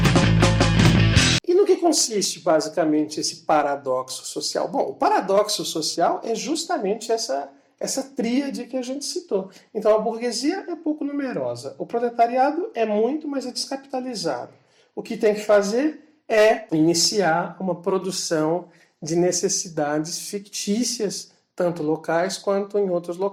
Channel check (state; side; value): identical; both; correlation 1.00